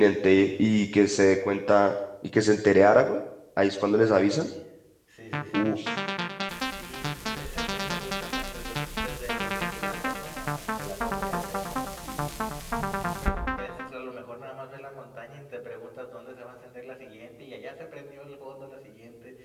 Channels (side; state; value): both; identical; correlation 1.00